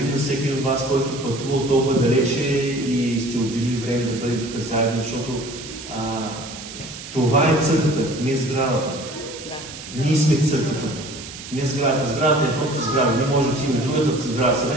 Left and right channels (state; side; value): noise; right; hiss, 13 dB below the sound